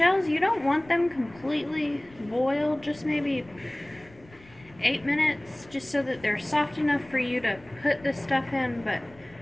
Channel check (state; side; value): noise; left; rumble, 25 dB below the sound